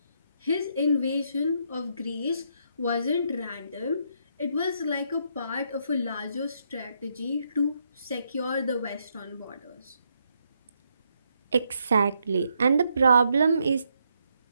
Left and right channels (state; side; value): inverted; both; correlation -0.76